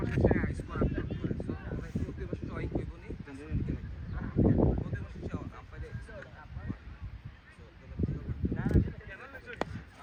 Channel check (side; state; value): both; identical; correlation 1.00